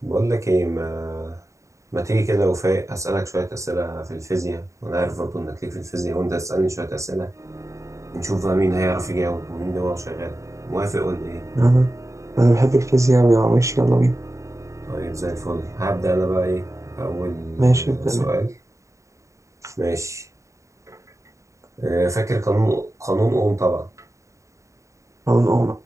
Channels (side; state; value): left; late; 0.15 ms